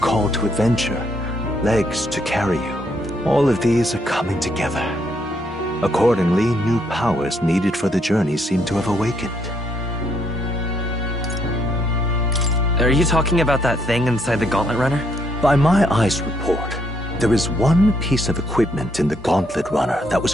to adventure, legs to carry you. All of these are coming together. Accordingly, new powers needed for the journey seem to have awakened. Are you talking about that thing inside the Gauntlet Runner? By my eyes report, there is one piece of equipment in the Gauntlet Runner that was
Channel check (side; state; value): both; normal; correlation 0.72